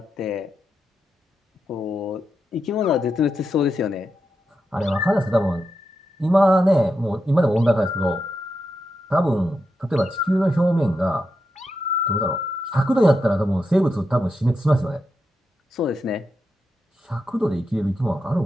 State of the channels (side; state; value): both; normal; correlation 0.86